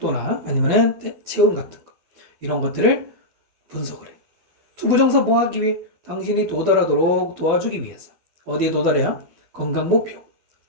아니면은 체온 같은 거 이런 것들을 분석을 해. 투부정사 뭐 하기 위해? 당신이 도달하도록 도와주기 위해서. 어디에 도달해야? 건강 목표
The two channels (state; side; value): late; left; 12 ms